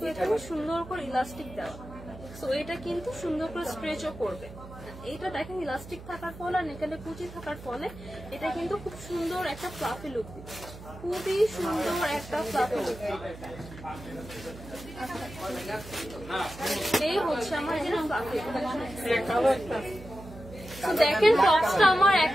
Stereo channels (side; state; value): right; noise; hum, 15 dB below the sound